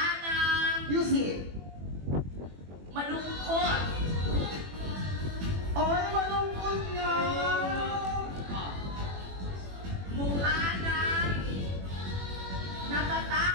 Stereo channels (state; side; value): late; left; 21 ms